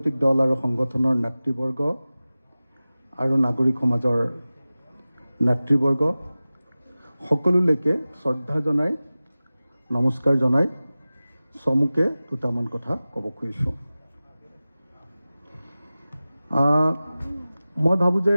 দল আৰু সংগঠনৰ নেতৃবৰ্গ আৰু নাগৰিক সমাজৰ নেতৃবৰ্গ সকলোলৈকে শ্ৰদ্ধা জনাই নমস্কাৰ জনাই চমুকে দুটামান কথা ক'ব খুজিছোঁ। মই ভাবোঁ যে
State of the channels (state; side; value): inverted; both; correlation -0.97